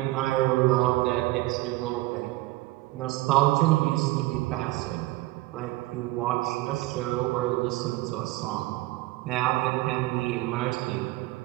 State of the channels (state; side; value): quieter; left; 18.9 dB